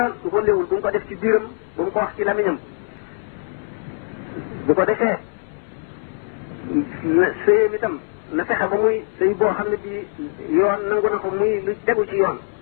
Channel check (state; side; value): silent; right; 64 dB below the other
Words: lu ko lewul bu mu ko def ci biiram bu mu ko wax ci lamiñam bu ko defee sëyam itam na fexe ba muy sëy boo xam ne bii yoon nangu na ko muy lu tegu ci yoon